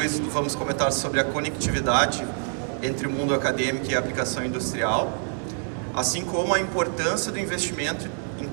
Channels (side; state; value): left; silent; 55 dB below the other